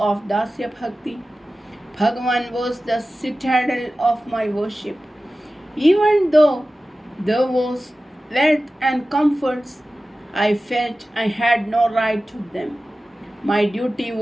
Dasya Bhakti? Bhagavan was the citadel of my worship. Even though there was wealth and comforts, I felt I had no right to them. My duty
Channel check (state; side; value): normal; both; correlation 0.95